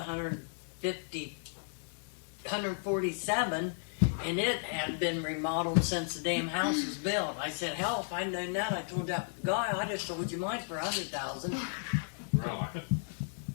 and it had been remodeled since the damn house was built. I said, hell, if I'd known that, I told that guy, I'd have sold you mine for $100,000. Really?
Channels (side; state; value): right; silent; digital silence